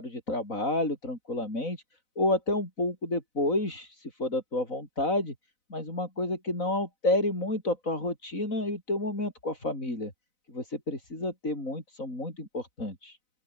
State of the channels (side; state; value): right; late; 4.0 ms